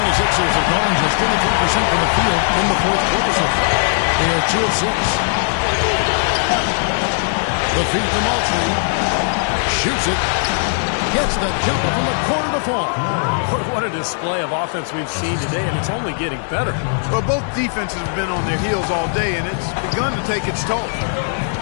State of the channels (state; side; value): silent; right; 66 dB below the other